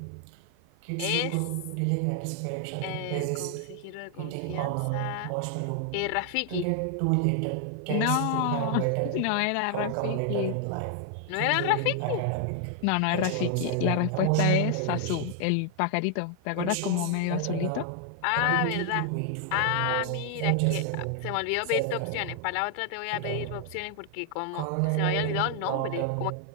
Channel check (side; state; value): both; different; correlation 0.00